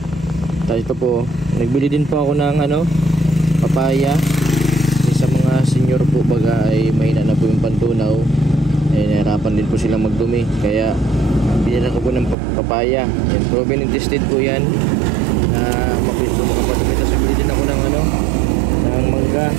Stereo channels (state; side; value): drops out; left; at 12.4 s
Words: Tapos ito po, nagbili din po ako ng papaya. Sa mga senior po baga ay mahina na po yung pantunaw. Nahirapan din po silang magdumi, kaya binila ko po ng papaya. Yan, proven and tested po yan. Mabilis po po. Tapos bili din ako ng mangga.